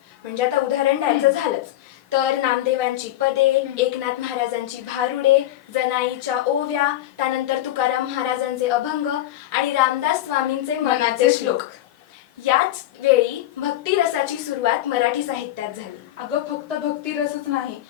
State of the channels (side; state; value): right; quieter; 13.9 dB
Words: म्हणजे आता उदाहरण द्यायचं झालंच तर नामदेवांची पदे, एकनाथ महाराजांची भारुडे, जनाईच्या ओव्या, त्यानंतर तुकाराम महाराजांचे अभंग आणि रामदास स्वामींचे मनाचे श्लोक। याच वेळी भक्ती रसाची सुरुवात मराठी साहित्यात झाली। अगं, फक्त भक्ती रसच नाही,